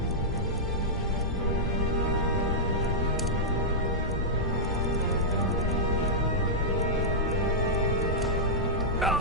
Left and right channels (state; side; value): normal; both; correlation -0.10